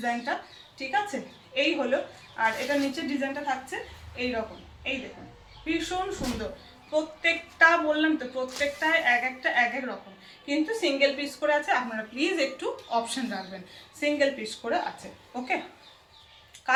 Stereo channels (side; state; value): both; identical; correlation 1.00